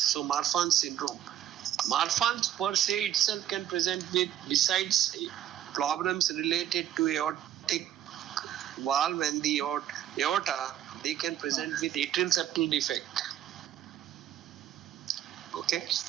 Marfan's syndrome. Marfan's per se itself can present with, besides problems related to aortic valve and the aorta, they can present with atrial septal defect. Okay.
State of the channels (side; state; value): left; quieter; 11.3 dB